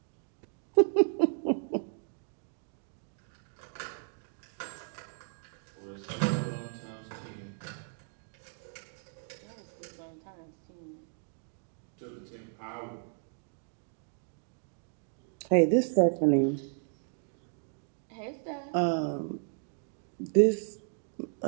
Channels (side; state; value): left; silent; 55 dB below the other